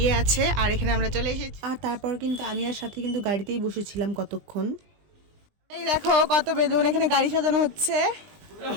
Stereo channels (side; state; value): left; late; 20 ms